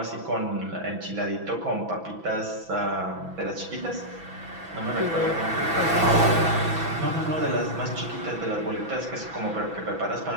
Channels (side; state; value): left; late; 6.0 ms